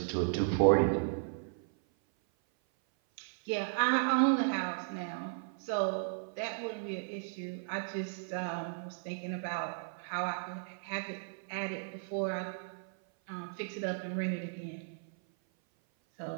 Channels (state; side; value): silent; left; 54 dB below the other